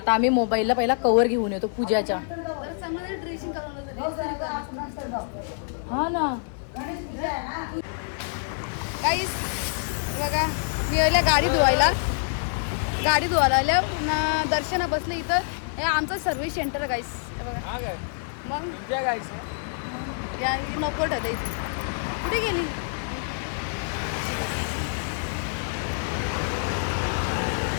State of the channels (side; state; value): right; silent; digital silence